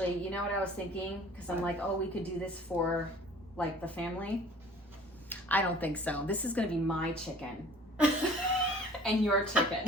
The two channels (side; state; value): both; normal; correlation 0.49